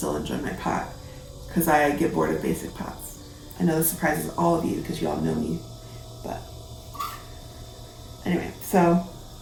enjoy my pot because I get bored of basic pots. I know this surprises all of you because you all know me, but anyway, so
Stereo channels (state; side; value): identical; both; correlation 1.00